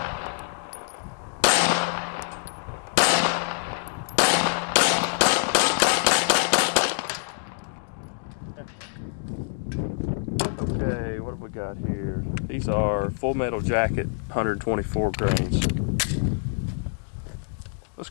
Okay, what have we got here? These are full metal jacket, 124 grains. Let's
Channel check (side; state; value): right; silent; digital silence